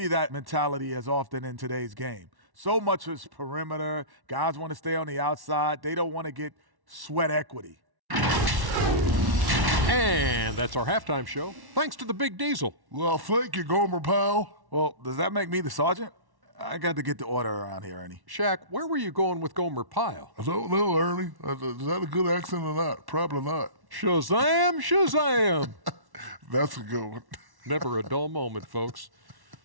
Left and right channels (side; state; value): left; late; 1.1 ms